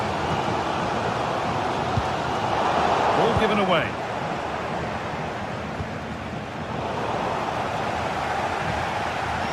Ball given away.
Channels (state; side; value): identical; both; correlation 1.00